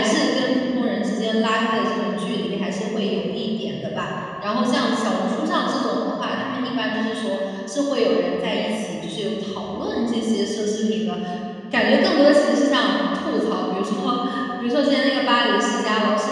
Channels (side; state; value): both; identical; correlation 1.00